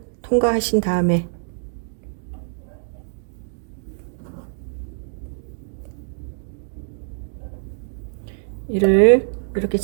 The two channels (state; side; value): silent; left; digital silence